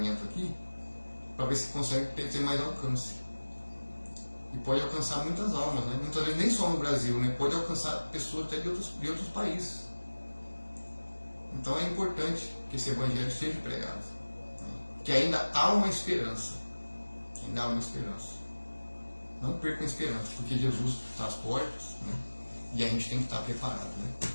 aqui para ver se consegue ter mais alcance. E pode alcançar muitas almas, né? Muitas vezes nem só no Brasil, né? Pode alcançar pessoas até de outros países. Então é importante que esse Evangelho seja pregado, né? Que ainda há uma esperança. Ainda há uma esperança. Não percam a esperança, porque Jesus está às portas, né? E a gente tem que estar preparado, né?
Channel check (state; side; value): inverted; both; correlation -1.00